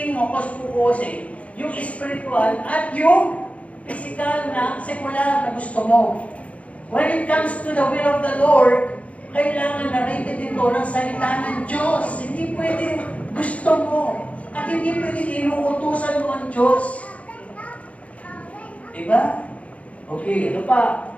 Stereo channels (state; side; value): late; right; 0.067 ms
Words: mapos-pukosin yung spiritual at yung physical na sekular na gusto mo. When it comes to the will of the Lord, kailangan na rated ito ng salita ng Diyos. Hindi pwedeng gusto mo. At hindi pwedeng inuutusan mo ang Diyos. Diba? Okay, ano pa?